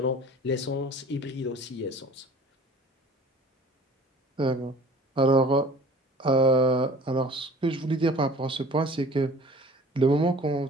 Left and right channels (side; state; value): both; normal; correlation 0.47